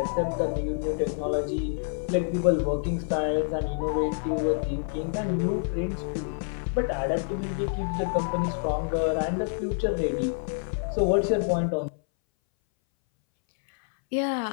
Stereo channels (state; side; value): silent; right; 60 dB below the other